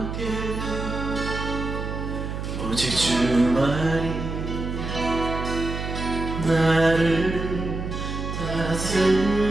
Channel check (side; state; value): right; noise; hum, 5 dB below the sound